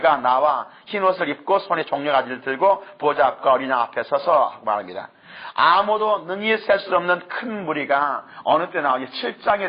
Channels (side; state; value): both; identical; correlation 1.00